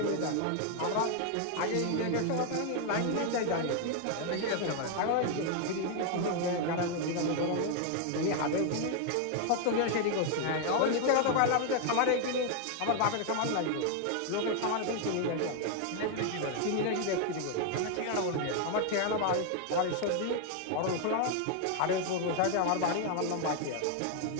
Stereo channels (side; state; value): both; different; correlation 0.00